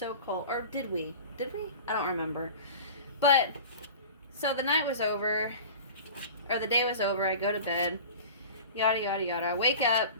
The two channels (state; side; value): inverted; both; correlation -0.37